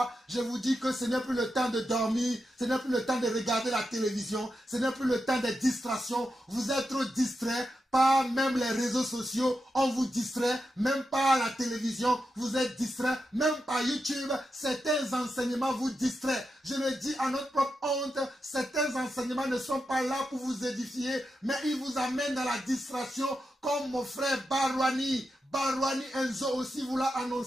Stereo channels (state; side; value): normal; both; correlation 0.88